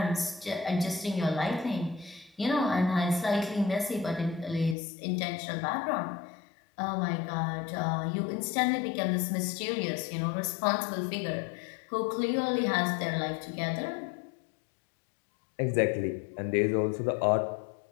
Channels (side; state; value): right; drops out; at 4.8 s